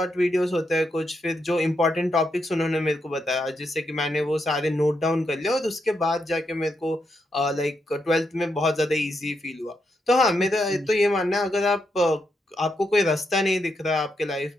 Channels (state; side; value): normal; both; correlation 0.82